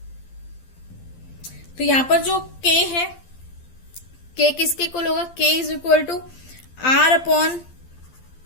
तो यहां पर जो के है, के किसके इक्वल होगा? K is equal to R upon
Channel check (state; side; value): late; right; 12 ms